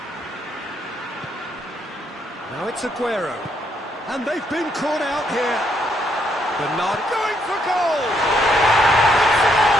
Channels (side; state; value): both; normal; correlation 0.73